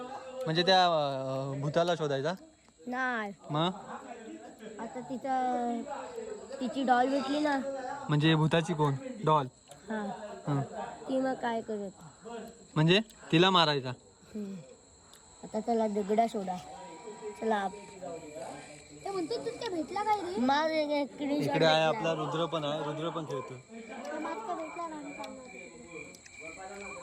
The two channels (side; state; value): both; identical; correlation 1.00